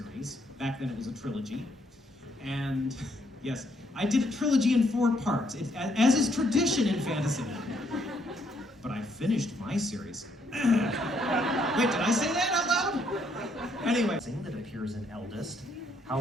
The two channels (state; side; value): normal; both; correlation 0.71